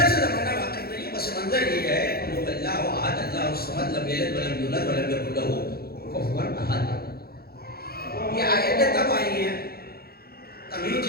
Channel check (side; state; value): right; late; 0.45 ms